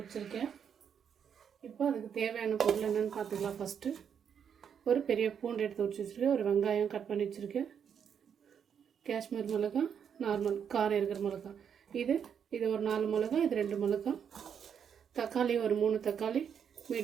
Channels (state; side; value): quieter; left; 7.8 dB